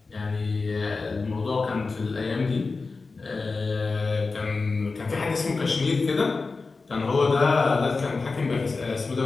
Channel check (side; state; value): right; quieter; 4.0 dB